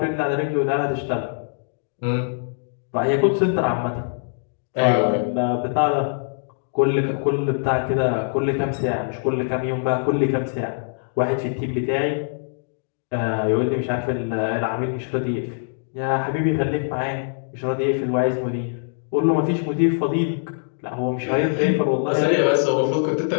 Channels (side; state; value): right; silent; digital silence